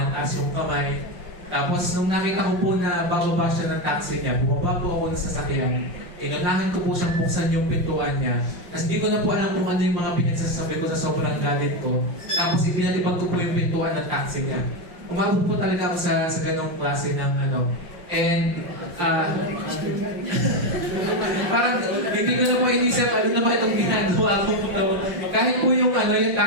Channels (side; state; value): left; late; 5.7 ms